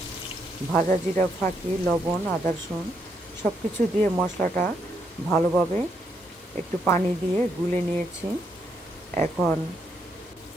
ভাজা জিরা ফাঁকি, লবণ, আদা রসুন সব কিছু দিয়ে মশলাটা ভালোভাবে একটু পানি দিয়ে গুলে নিয়েছি। এখন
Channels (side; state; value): both; normal; correlation 0.76